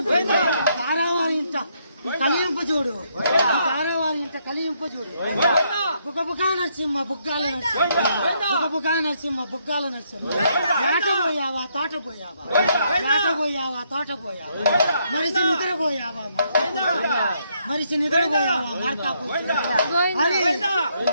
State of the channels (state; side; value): inverted; both; correlation -0.74